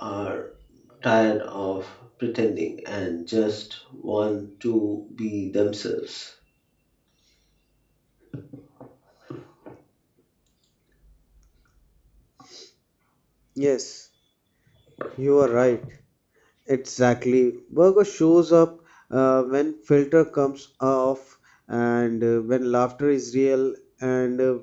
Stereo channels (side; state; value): both; identical; correlation 1.00